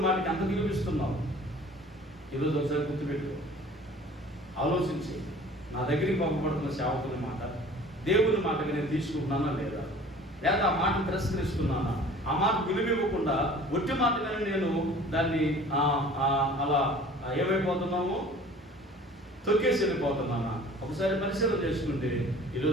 మాటకి ఎంత విలువిస్తున్నావు? ఈరోజు ఒకసారి గుర్తుపెట్టుకో, ఆలోచించి నా దగ్గరికి పంపబడుతున్న సేవకుని మాట దేవుని మాటకి నేను తీసుకుంటున్నానా లేదా ఆ మాటను తిరస్కరిస్తున్నానా? ఆ మాట విలువివ్వకుండా ఒట్టి మాటగానే నేను దాన్ని అలా ఏమైపోతున్నాము, తొక్కేసి వెళ్ళిపోతున్నానా? ఒకసారి పరిశీలన చేసుకుంటే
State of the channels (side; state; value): both; normal; correlation 0.47